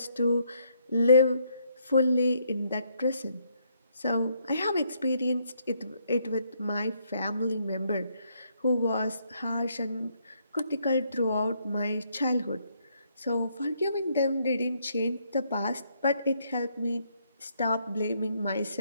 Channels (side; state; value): both; inverted; correlation -0.72